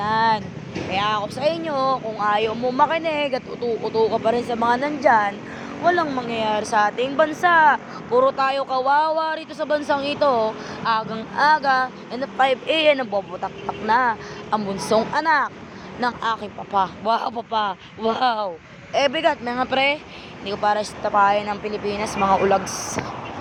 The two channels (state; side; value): identical; both; correlation 1.00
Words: Kaya ako sa inyo, kung ayaw mo makinig at utu-utu ka pa rin sa mga nandyan, walang mangyayari sa ating bansa. Puro tayo kawawa rito sa bansang ito. Agang-aga, and at 5 a.m. nabobotak-tak na ang bunsong anak ng aking papa. Wow, papa. Wow. Bigat, mga pre. Hindi ko para tapahin ng Pilipinas, mga ulags.